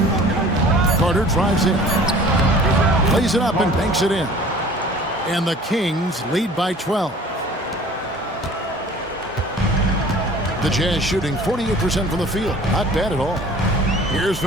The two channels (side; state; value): both; normal; correlation 0.47